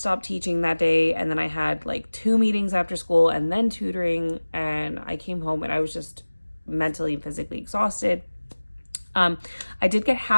teaching that day, and then I had like 2 meetings after school and then tutoring, and I came home and I was just mentally and physically exhausted. I did get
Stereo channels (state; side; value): inverted; both; correlation -1.00